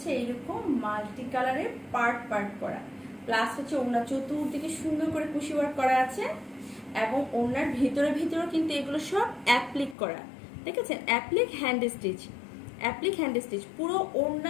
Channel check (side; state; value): right; drops out; at 10.0 s